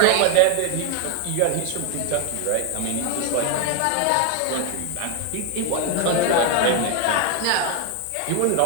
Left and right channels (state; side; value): different; both; correlation 0.01